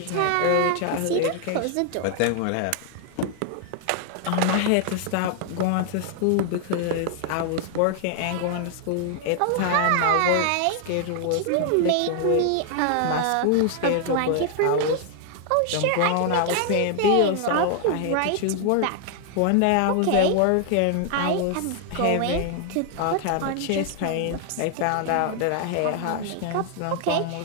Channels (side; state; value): both; different; correlation 0.00